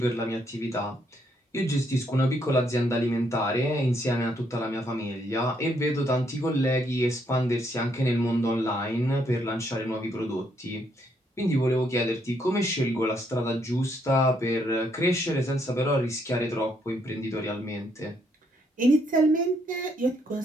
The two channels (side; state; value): both; normal; correlation 0.73